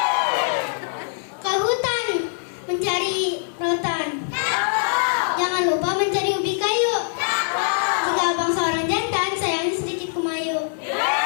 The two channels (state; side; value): silent; right; 64 dB below the other